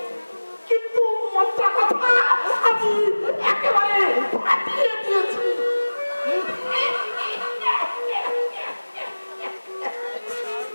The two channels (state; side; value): inverted; both; correlation -1.00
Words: কিন্তু মন্ত্রা কথা আমি একেবারে ফাটিয়ে দিয়েছি।